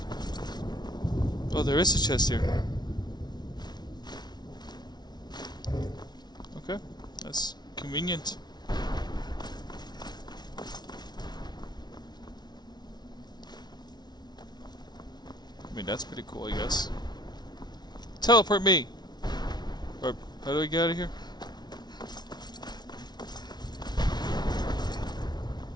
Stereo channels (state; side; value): late; right; 0.20 ms